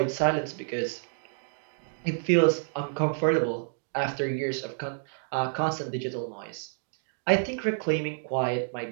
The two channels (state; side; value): silent; left; digital silence